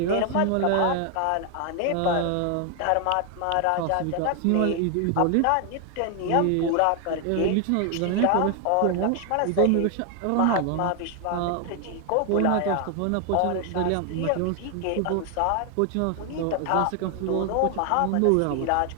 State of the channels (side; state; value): both; different; correlation 0.00